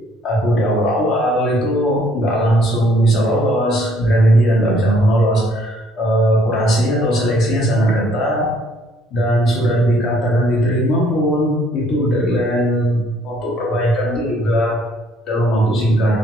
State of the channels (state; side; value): normal; both; correlation 0.63